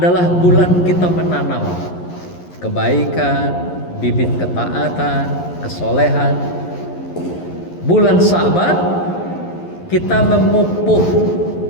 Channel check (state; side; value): late; right; 11 ms